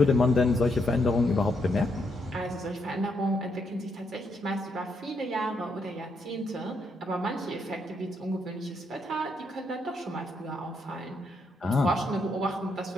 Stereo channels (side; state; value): both; normal; correlation 0.77